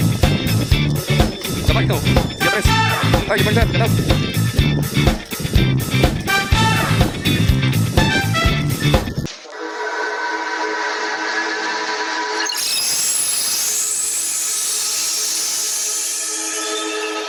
Sabay ito. Sige, pres. Ay, ibang saan. Ganap.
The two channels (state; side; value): identical; both; correlation 1.00